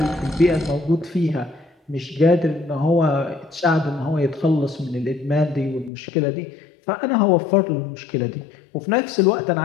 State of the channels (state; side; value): drops out; right; at 5.9 s